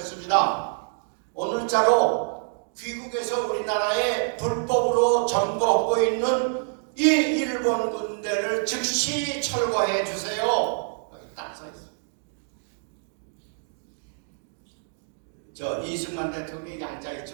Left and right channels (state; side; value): silent; left; digital silence